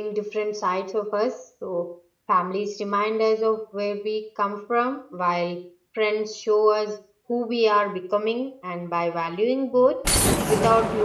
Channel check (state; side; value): identical; both; correlation 1.00